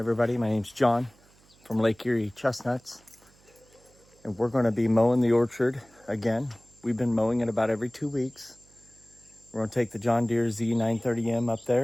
my name's John from Lake Erie Chestnuts. And we're gonna be mowing the orchard again. We've been mowing it about every 2 weeks. We're gonna take the John Deere Z930M up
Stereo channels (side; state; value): right; noise; hum, 30 dB below the sound